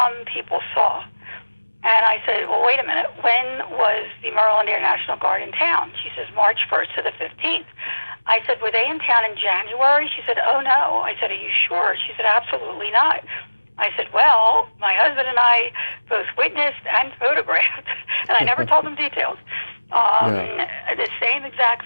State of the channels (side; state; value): both; inverted; correlation -1.00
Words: people saw. And I said, well, wait a minute. When was the Maryland Air National Guard in town? She says, March 1st to the 15th. I said, were they in town in January? She said, oh, no. I said, are you sure? She said, absolutely not. I said, well, my husband and I both witnessed and photographed, and I never told them details, the same exact